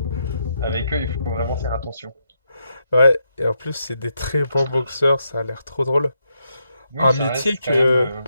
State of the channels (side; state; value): both; inverted; correlation -0.80